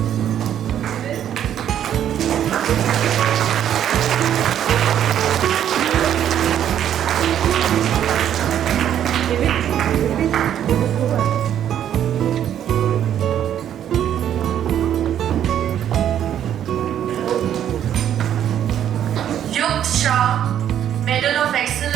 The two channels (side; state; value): left; quieter; 10.2 dB